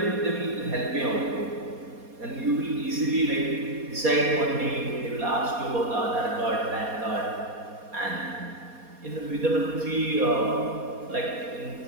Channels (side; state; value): left; late; 4.2 ms